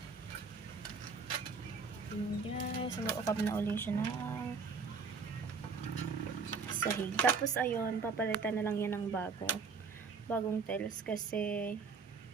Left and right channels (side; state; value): left; quieter; 4.9 dB